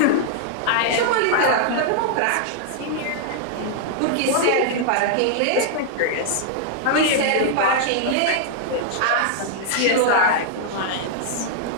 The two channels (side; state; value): both; different; correlation -0.01